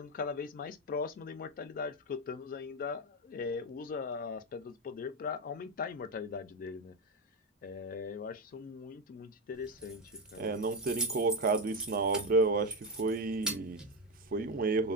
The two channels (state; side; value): normal; both; correlation 0.13